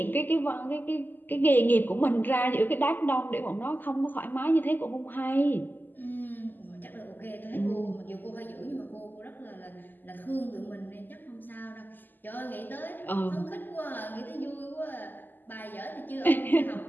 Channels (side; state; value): right; late; 0.089 ms